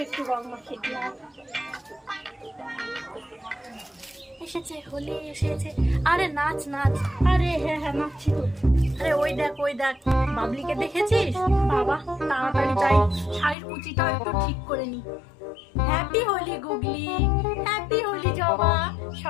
একটু রং মাখিয়ে দিই। এসেছে হোলি এসেছে। আরে নাচ নাচ। আরে হ্যাঁ নাচছি তো। আরে ওই দেখ বাবলিকে দেখেছিস? বাবা তাড়াতাড়ি যাই, শাড়ির কুচিটাও একটু ঠিক করে নি। হ্যাপি হোলি গুগলি, হ্যাপি হোলি জবা,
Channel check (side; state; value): right; drops out; at 13.6 s